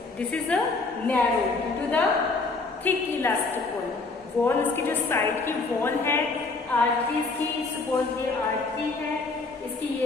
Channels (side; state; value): right; quieter; 3.8 dB